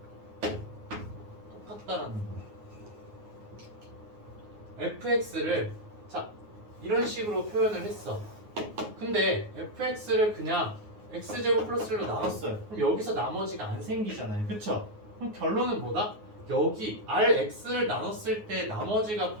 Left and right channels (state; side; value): late; left; 9.5 ms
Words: 똑같다라는 거예요. fx를 자, 이런 식으로 표현을 했어. 근데 fx를 그냥 x제곱 플러스 1로 나눴어요. 그럼 여기서 나머지가 안 생기잖아요. 그쵸? 그럼 결론은 뭐다? 여기 rx를 나눴을 때 나머지가